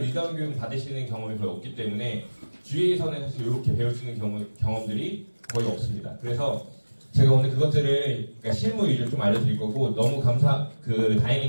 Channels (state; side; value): inverted; both; correlation -1.00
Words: 리더운 교육 받으시는 경험이 거의 없기 때문에 GA에서는 사실 이렇게 배울 수 있는 경험들이 거의 없습니다. 그래서 제가 오늘 그것들을 그러니까 실무 위주로 좀 알려드릴 거고, 너무